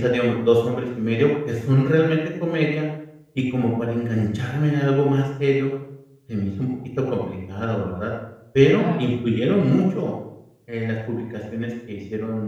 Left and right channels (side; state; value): both; identical; correlation 1.00